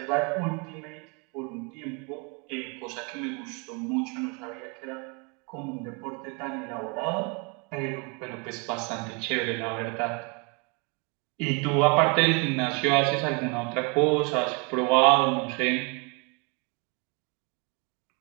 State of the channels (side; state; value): left; quieter; 32.7 dB